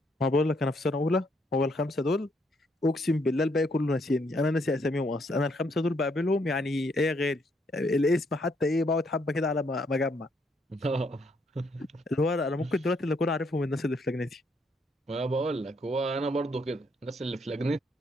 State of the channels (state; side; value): normal; both; correlation 0.72